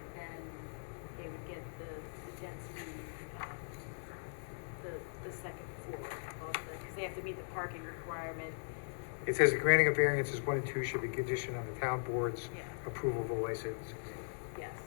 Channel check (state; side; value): silent; right; digital silence